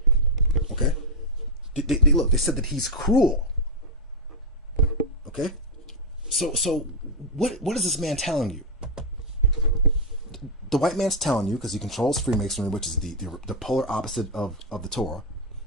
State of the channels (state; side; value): normal; both; correlation 0.01